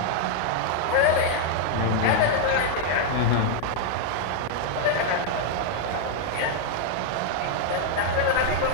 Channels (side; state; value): both; different; correlation 0.00